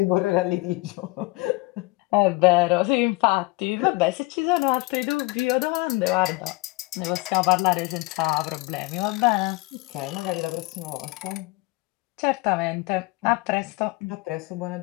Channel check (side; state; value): right; quieter; 23.5 dB